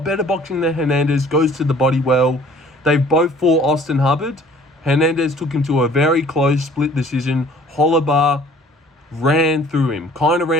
better boxing than Hernandez, goes to the body well. They've both fought Austin Hubbard. Hernandez took him to a very close split decision. Holobar ran through him,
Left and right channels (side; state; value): both; normal; correlation 0.53